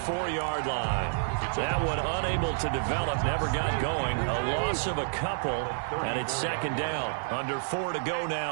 line. That one unable to develop, never got going. A loss of a couple, and it's second down. Under 4 to go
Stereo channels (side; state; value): left; silent; digital silence